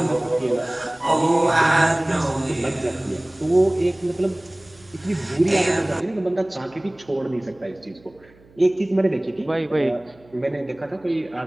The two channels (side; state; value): right; noise; hum, 28 dB below the sound